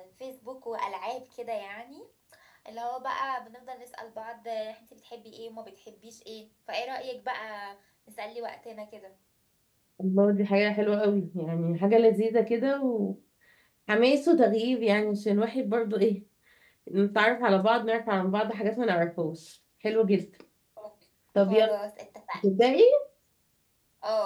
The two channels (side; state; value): both; identical; correlation 1.00